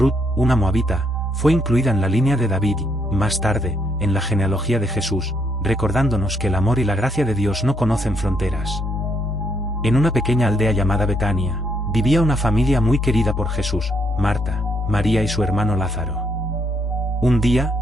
una moabita, fue incluida en la línea de David y, más tarde, en la genealogía de Jesús, recordándonos que el amor y la gracia de Dios no conocen fronteras. En una pequeña aldea llamada Betania, vivía una familia muy querida por Jesús, Marta, María y su hermano Lázaro. Un día,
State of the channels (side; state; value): both; normal; correlation 0.73